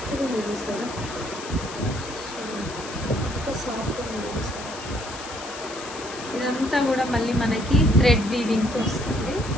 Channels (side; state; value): left; noise; hiss, 12 dB below the sound